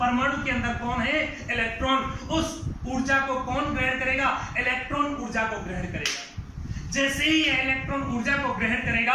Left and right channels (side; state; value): both; identical; correlation 1.00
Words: के अंदर कौन है, इलेक्ट्रॉन। उस ऊर्जा को कौन ग्रहण करेगा, इलेक्ट्रॉन ऊर्जा को ग्रहण करेगा। जैसे ही ये इलेक्ट्रॉन ऊर्जा को ग्रहण करेगा,